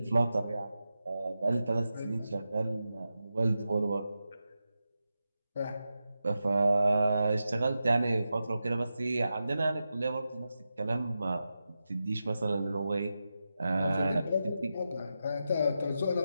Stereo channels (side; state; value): both; inverted; correlation -0.90